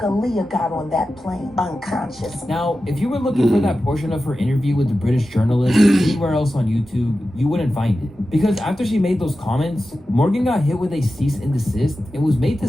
got on that plane, unconscious. Now, if you were looking for that portion of her interview with the British journalist anywhere else on YouTube, you wouldn't find it. Because after she made those comments, Morgan got hit with a cease and desist and was made to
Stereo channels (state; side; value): normal; both; correlation 0.93